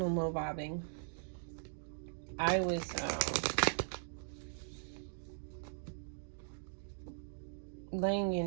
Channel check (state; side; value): silent; left; digital silence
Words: Mo Vibing. I was laying